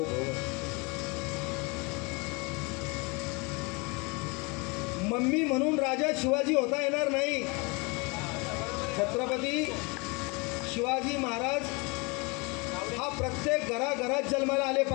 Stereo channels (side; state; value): right; quieter; 29.0 dB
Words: भव. मम्मी म्हणून राजा शिवाजी होता येणार नाही. छत्रपती शिवाजी महाराज हा प्रत्येक घराघरात जन्माला आले